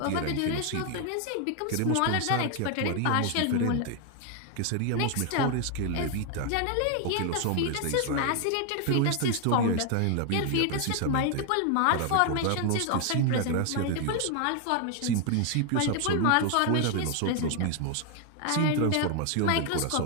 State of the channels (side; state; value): both; different; correlation 0.01